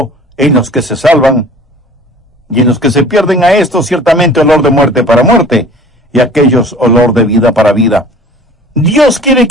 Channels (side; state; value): both; normal; correlation 0.46